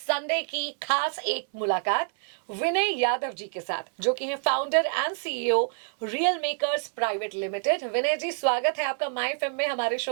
की खास एक मुलाकात विनय यादव जी के साथ जो कि हैं founder and CEO real makers private limited. Vinay ji, स्वागत है आपका माय एफएम में, हमारे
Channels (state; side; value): silent; left; 59 dB below the other